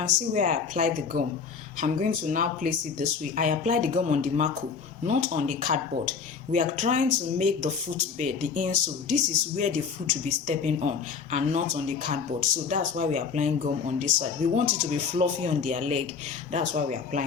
see where I applied the gum. I'm going to now place it this way. I applied the gum on the marco, not on the cardboard. We are trying to make the footbed, the insole. This is where the foot will be stepping on, and not on the cardboard. So that's why we are applying gum on this side. We want it to be fluffy on their leg. That's why we are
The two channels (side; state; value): right; quieter; 5.8 dB